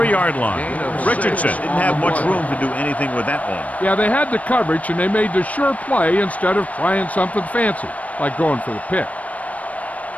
line. Richardson didn't have much room to do anything with that one. Yeah, they had the coverage, and they made the sure play instead of trying something fancy, like going for the pick.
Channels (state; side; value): late; right; 0.069 ms